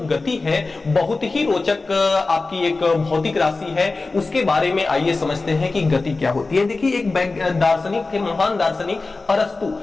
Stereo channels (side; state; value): right; quieter; 3.6 dB